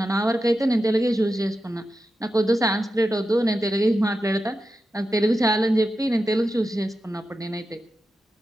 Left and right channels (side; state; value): both; normal; correlation 0.90